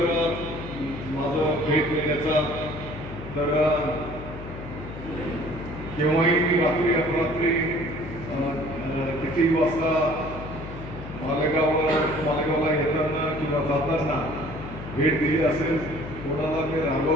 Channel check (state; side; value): noise; left; hum, 11 dB below the sound